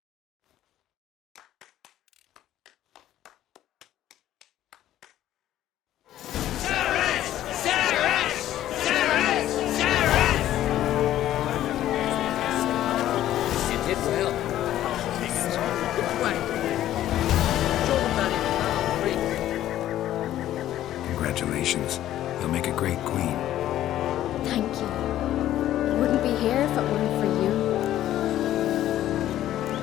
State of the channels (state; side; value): quieter; right; 12.8 dB